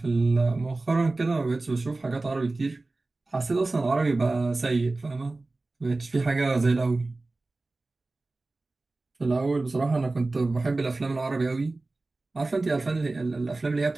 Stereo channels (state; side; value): quieter; left; 3.2 dB